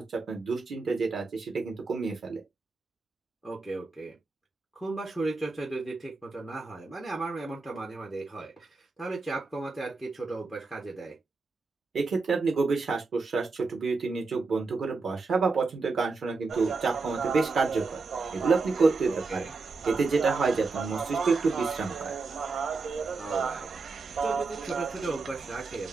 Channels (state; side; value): quieter; left; 4.0 dB